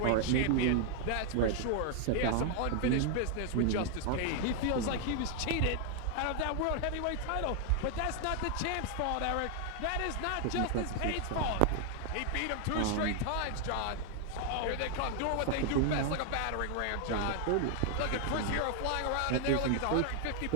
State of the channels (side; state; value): both; different; correlation 0.00